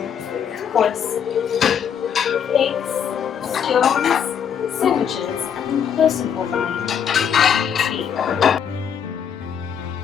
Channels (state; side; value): quieter; right; 8.0 dB